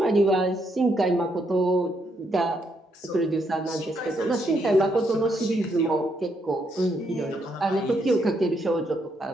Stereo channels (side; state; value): both; normal; correlation 0.76